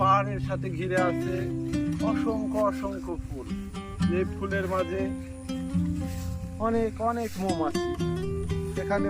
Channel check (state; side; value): identical; both; correlation 1.00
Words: পাহাড়ের সাথে ঘিরে আছে অসংখ্য অসংখ্য ফুল। যে ফুলের মাঝে অনেক অনেক মৌমাছি, এখানে